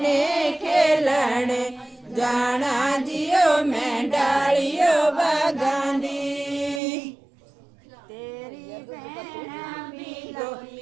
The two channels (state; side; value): drops out; left; at 6.8 s